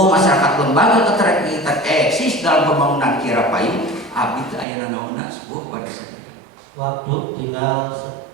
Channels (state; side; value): drops out; left; at 4.7 s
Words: masyarakat, lembaga keterkaitan eksis dalam pembangunan Kirapanyu abdi teu aya nanaonna sebuah pada saja. Waktu tinggal